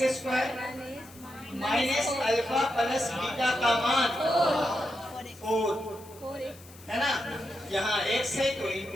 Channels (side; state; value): left; noise; hiss, 22 dB below the sound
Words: square minus alpha plus beta का मान 4 है ना। यहाँ x है तो